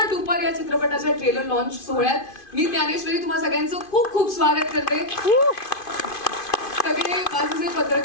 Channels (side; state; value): right; late; 2.5 ms